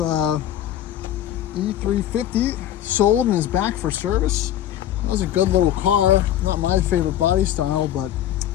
E350 sold and is back for service. That was a good little car. Not my favorite body style, but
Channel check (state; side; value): quieter; right; 11.7 dB